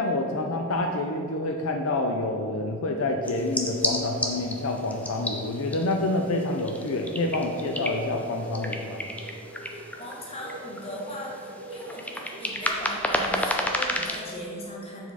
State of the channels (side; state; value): both; normal; correlation 0.07